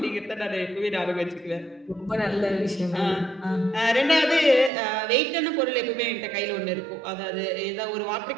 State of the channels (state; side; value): drops out; left; at 4.7 s